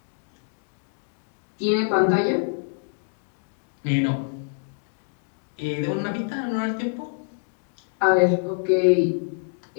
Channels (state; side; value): silent; right; digital silence